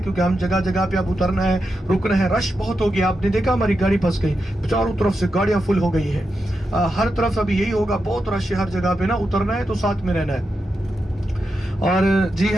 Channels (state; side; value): normal; both; correlation 0.87